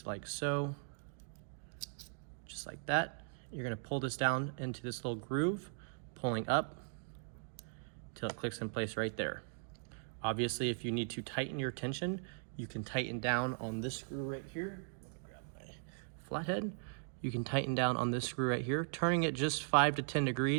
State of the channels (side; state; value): left; silent; digital silence